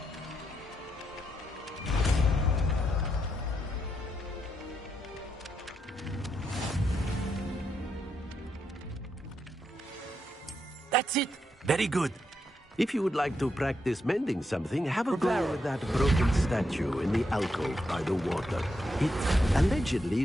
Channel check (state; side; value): normal; both; correlation 0.81